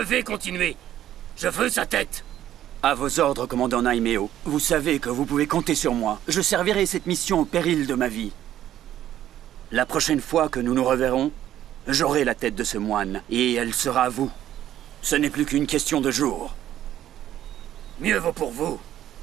continuer. Je veux sa tête. À vos ordres, commandant Naimeo. Vous savez que vous pouvez compter sur moi. Je servirai cette mission au péril de ma vie. La prochaine fois que nous nous reverrons, j'aurai la tête de ce moine, et elle sera à vous. Ce n'est plus qu'une question de jours. Mieux vaut pour vous.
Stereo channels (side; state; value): left; quieter; 11.9 dB